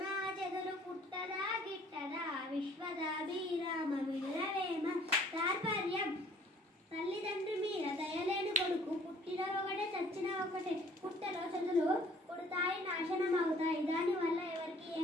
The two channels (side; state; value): both; normal; correlation 0.56